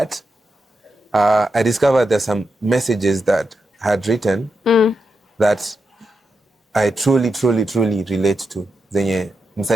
I discovered there's some messages that I had written that I truly relate to. Zenye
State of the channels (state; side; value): normal; both; correlation 0.87